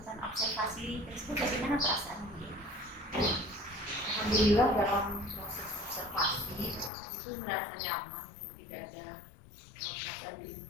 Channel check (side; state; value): right; drops out; at 6.9 s